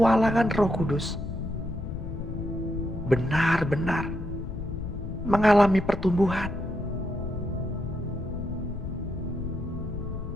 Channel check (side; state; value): left; noise; rumble, 6 dB below the sound